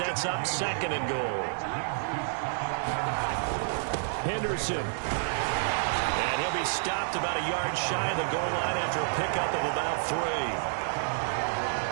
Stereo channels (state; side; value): silent; left; digital silence